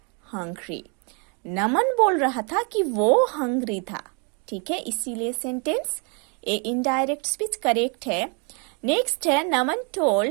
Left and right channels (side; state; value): left; quieter; 35.6 dB